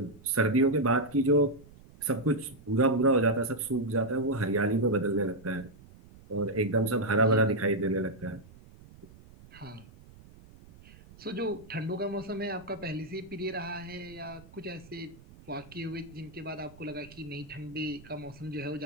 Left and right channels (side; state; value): right; noise; rumble, 22 dB below the sound